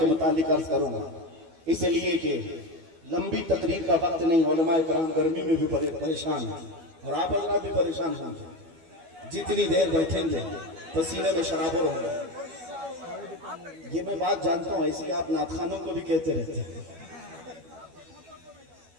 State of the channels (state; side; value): late; left; 12 ms